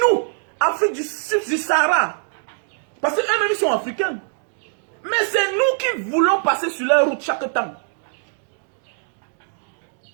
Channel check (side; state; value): left; silent; digital silence